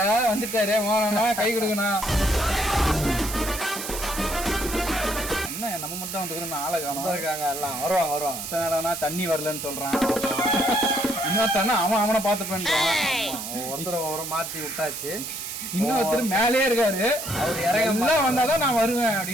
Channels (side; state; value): right; noise; hiss, 7 dB below the sound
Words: வந்துட்டாரு. மோனா கை கொடுக்கணா. என்ன நம்ம மட்டும் வந்துக்கிறோம், ஆளை காணும் இருக்காங்க. எல்லாம் வருவாங்க. தண்ணி வரலன்னு சொல்கிறான். இன்னொருத்தானே அவனை பார்த்துப்பேன். ஒருத்தர் மாற்றி விட்டாச்சு. இன்னொருத்தர் மேலே இருக்காரு. அவர் இறங்கலாம் வந்தாதான் நான் வருவேன்